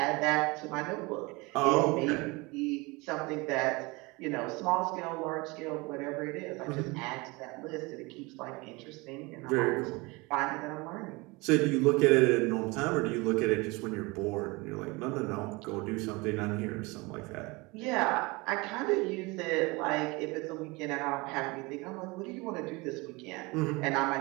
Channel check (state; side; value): quieter; left; 25.0 dB